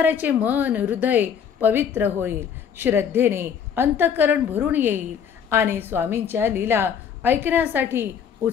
मन हृदय पवित्र होईल. श्रद्धेने अंतःकरण भरून येईल आणि स्वामींच्या लीला ऐकण्यासाठी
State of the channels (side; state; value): right; quieter; 7.7 dB